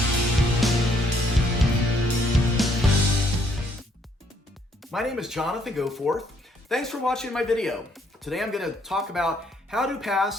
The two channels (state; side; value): normal; both; correlation 0.68